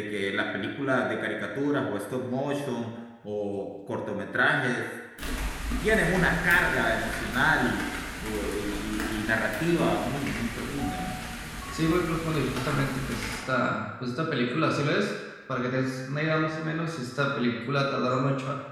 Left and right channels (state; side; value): identical; both; correlation 1.00